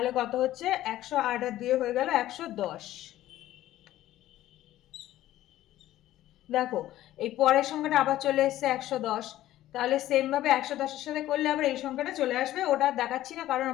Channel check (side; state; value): right; quieter; 14.2 dB